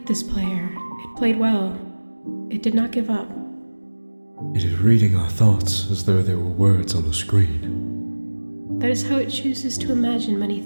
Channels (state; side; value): inverted; both; correlation -1.00